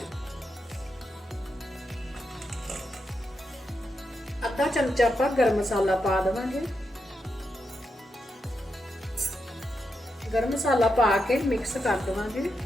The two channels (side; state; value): both; normal; correlation 0.85